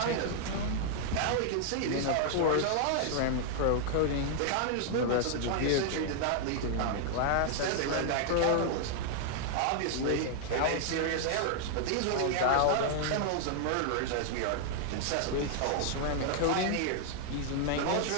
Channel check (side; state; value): both; different; correlation 0.00